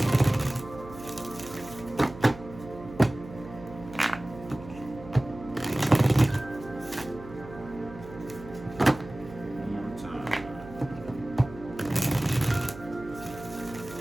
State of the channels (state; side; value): noise; right; hum, 15 dB below the sound